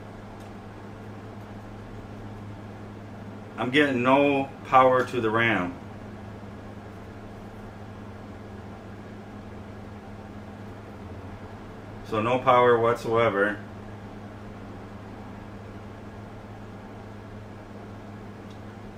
I'm getting no power to the RAM. So no power whatsoever.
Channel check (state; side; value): identical; both; correlation 1.00